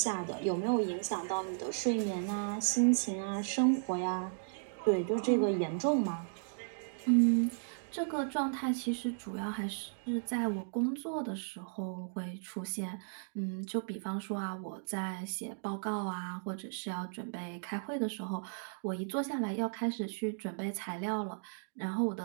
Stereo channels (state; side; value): silent; left; digital silence